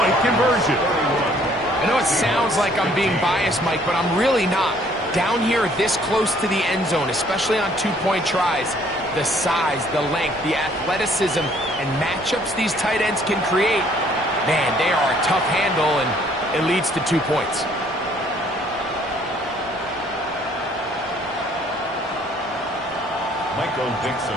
conversion. I know it sounds like I'm being biased, Mike, but I'm really not. Down here this close to the end zone, especially on 2-point tries, the size, the length, the athleticism, and matchups these tight ends can create, man, they are a tough handle, and it leads to 2 points. Michael Dixon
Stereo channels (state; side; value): normal; both; correlation 0.61